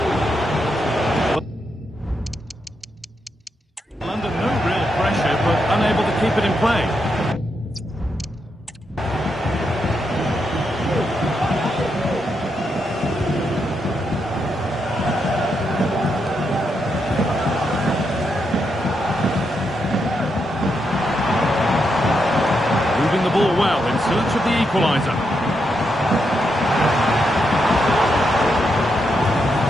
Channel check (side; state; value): both; normal; correlation 0.82